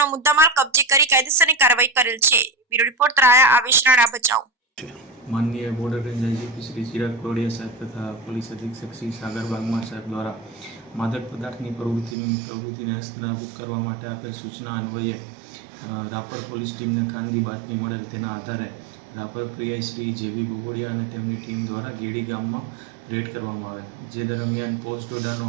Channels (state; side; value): drops out; left; at 12.2 s